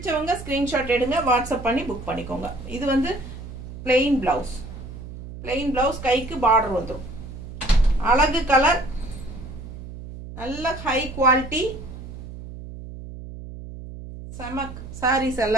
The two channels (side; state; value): right; noise; hum, 12 dB below the sound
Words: ஸ்க்ரீன்ஷாட் எடுங்க, வாட்ஸ்அப் பண்ணி புக் பண்ணிக்கோங்க. இது வந்து பிளெயின் ப்ளவுஸ், கைக்கு பார்டர் வந்துடும். அழகு கலர், நல்ல ஹை குவாலிட்டி செமக் சாரீஸ்